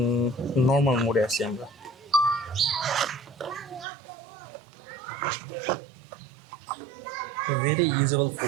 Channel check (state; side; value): drops out; left; at 3.9 s